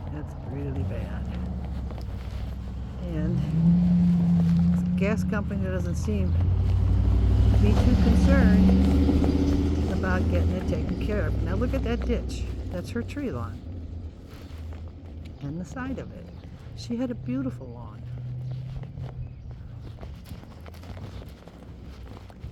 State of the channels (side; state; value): both; identical; correlation 1.00